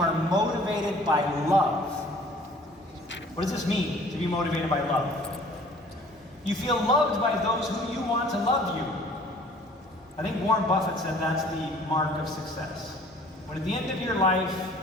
motivated by love. What does this mean, to be motivated by love? You feel loved by those who you want to love you. I think Warren Buffett said that's the mark of success. When at the end of your life,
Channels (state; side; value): normal; both; correlation 0.52